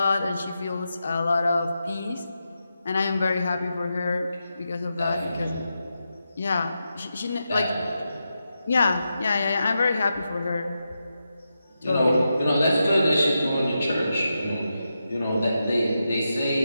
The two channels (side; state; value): both; inverted; correlation -0.88